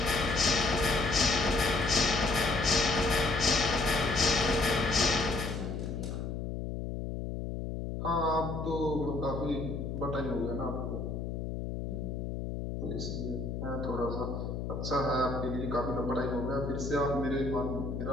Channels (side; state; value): left; noise; hum, 4 dB below the sound